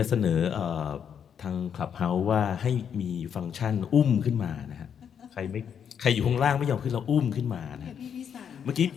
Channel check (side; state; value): right; quieter; 8.0 dB